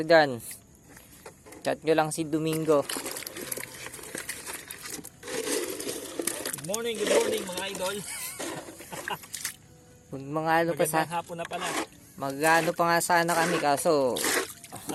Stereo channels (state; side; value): identical; both; correlation 1.00